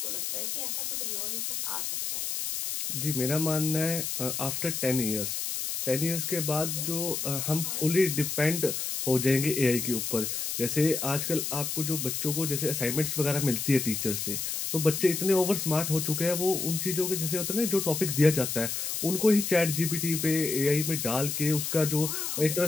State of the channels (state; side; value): noise; left; hiss, 3 dB below the sound